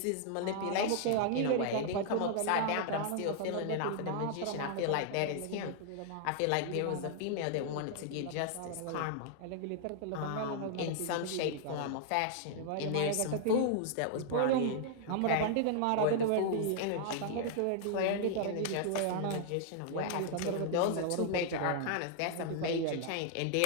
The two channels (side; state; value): both; different; correlation -0.01